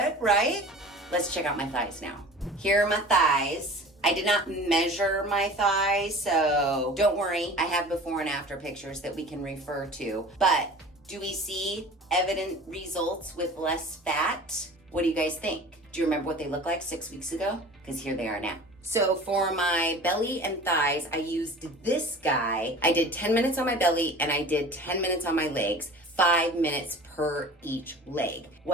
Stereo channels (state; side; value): normal; both; correlation 0.41